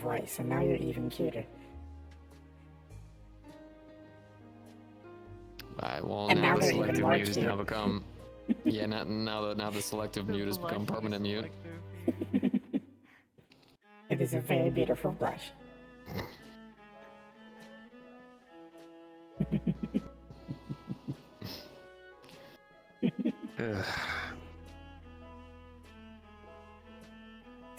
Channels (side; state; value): both; identical; correlation 1.00